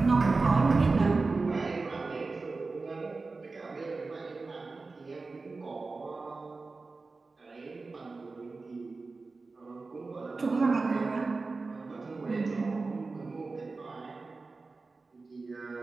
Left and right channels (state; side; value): quieter; left; 3.8 dB